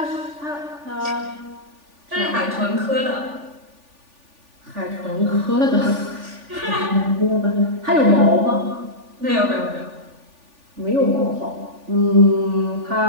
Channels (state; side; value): late; left; 3.4 ms